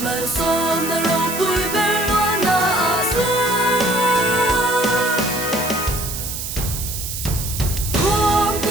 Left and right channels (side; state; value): right; noise; hiss, 6 dB below the sound